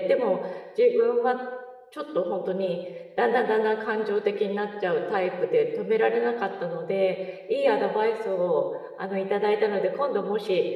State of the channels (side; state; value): both; identical; correlation 1.00